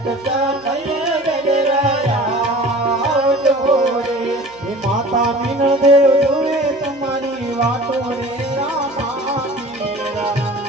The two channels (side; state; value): right; noise; hum, 28 dB below the sound